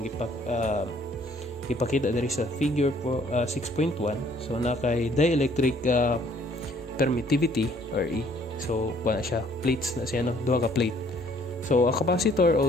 ipakita diri sa figure 6.1. So, na kay dielectric permittivity or E. So, kuha na siya, plates na siya, no, duha ka plate. So, a capacitor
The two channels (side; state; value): both; normal; correlation 0.61